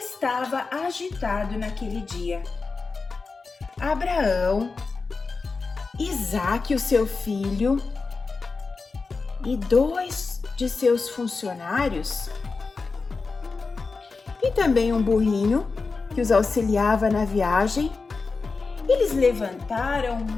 agitado naquele dia. Abraão, Isaque, o seu filho, e 2 de seus funcionários, e também um burrinho que os auxiliava na viagem, eles levantaram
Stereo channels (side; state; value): right; quieter; 4.3 dB